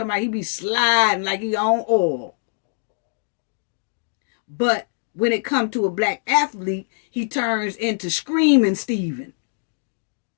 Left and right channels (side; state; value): right; silent; digital silence